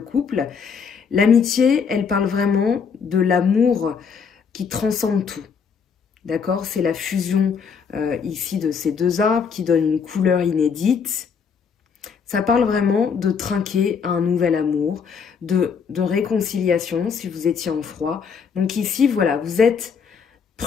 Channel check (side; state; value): right; quieter; 6.2 dB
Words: L'amitié, elle parle vraiment de l'amour qui transcende tout. D'accord? C'est la fusion ici de ces deux arbres qui donne une couleur inédite. Ça parle vraiment de trinquer à un nouvel amour, de réconciliation si vous étiez en froid. Donc ici, voilà, vous êtes